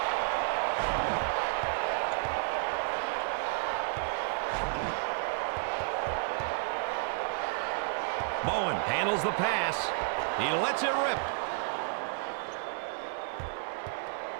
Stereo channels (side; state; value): left; silent; 57 dB below the other